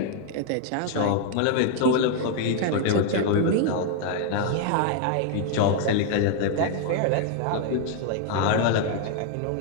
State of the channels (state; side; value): different; both; correlation 0.00